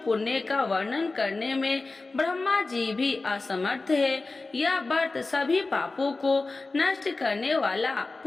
का वर्णन करने में ब्रह्मा जी भी असमर्थ है। यह व्रत सभी पापों को नष्ट करने वाला,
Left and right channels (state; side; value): quieter; right; 3.5 dB